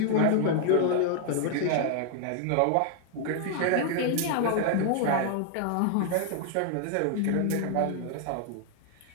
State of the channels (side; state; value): both; different; correlation 0.00